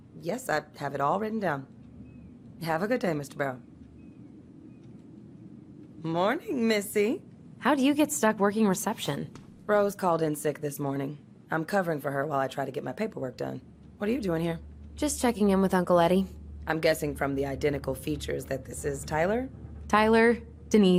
Yes, I have it all written down. Have a good day, Mr. Barrow. Morning, Missy. How do you get stuck working reception? Rose called in sick this morning. I'm covering for her while I try to get my paperwork done. What are you doing here? Just checking in with Uncle Eddie. I'm guessing from the identical features that this is Tyler? Tyler,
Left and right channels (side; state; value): both; identical; correlation 1.00